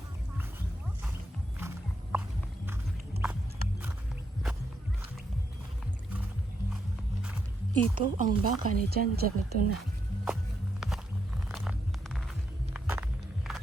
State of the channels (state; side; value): normal; both; correlation 0.80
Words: Ito ang baka ni Chan Chan. Ito na.